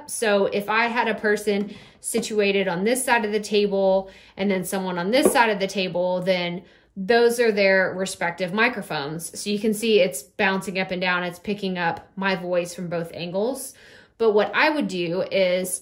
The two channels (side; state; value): both; identical; correlation 1.00